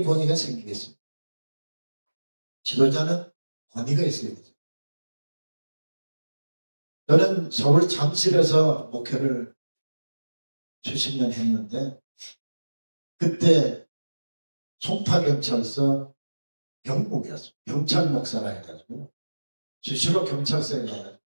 권위가 생기겠습니까? 지도자는 권위가 있어야 되죠. 저는 서울 잠실에서 목회를 수십 년 했는데 그때 송파경찰서 경목이었어요. 경찰 목사라 해가지고 수시로 경찰서에 가서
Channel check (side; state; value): both; inverted; correlation -1.00